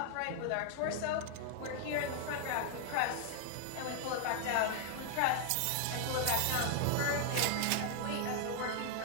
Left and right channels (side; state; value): both; different; correlation 0.00